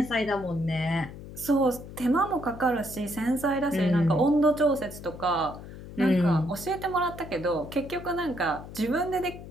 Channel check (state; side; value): noise; left; hum, 13 dB below the sound